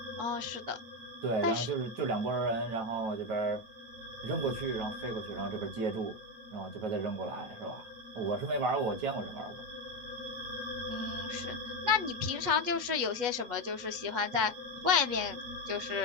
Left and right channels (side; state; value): left; late; 8.3 ms